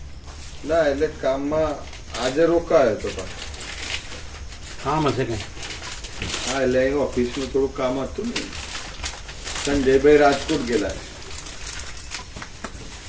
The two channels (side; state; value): both; identical; correlation 1.00